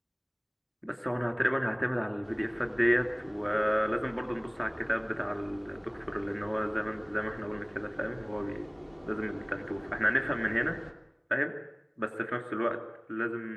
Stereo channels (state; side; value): identical; both; correlation 1.00